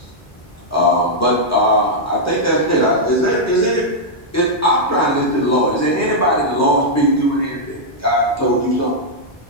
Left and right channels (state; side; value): normal; both; correlation -0.06